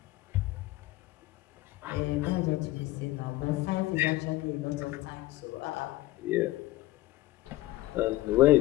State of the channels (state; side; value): quieter; right; 17.7 dB